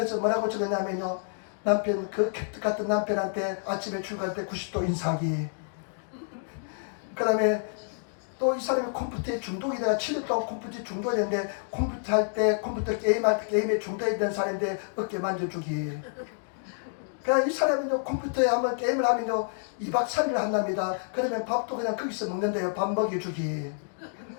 뭐라고 적었냐면요, 남편, 그 캣 같은 남편한테 아침에 출근할 때 90도 인사하기. 그 다음에 또 이 사람이 컴퓨터에 중독이 돼가 7년 동안 컴퓨터에 중독이 됐는데, 컴퓨터 할 때, 컴퓨터 게임할 때 게임에 중독이 된 사람인데 어깨 만져주기. 그러니까 이 사람은요, 컴퓨터에 한번 게임을 하면요 2박 3일 한답니다. 그러면 밥도 그냥 거기서 먹는데요, 밥 먹여주기.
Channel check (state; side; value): silent; right; digital silence